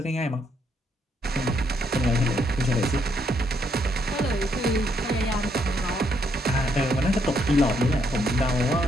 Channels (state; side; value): normal; both; correlation 0.73